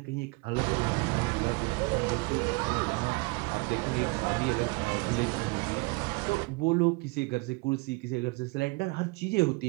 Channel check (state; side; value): quieter; left; 27.3 dB